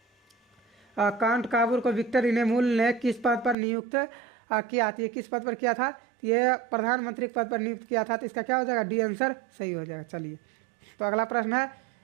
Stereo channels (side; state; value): left; drops out; at 3.6 s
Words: कांट काबूर को विक्टर इनेमुल ने किस पद पर नियुक्त किया था? ये किस पद पर किया था? ये प्रधानमंत्री पद पर नियुक्त किया था। तो इसका क्या हो जाएगा? डी आंसर सही हो जाएगा। चलिए तो अगला प्रश्न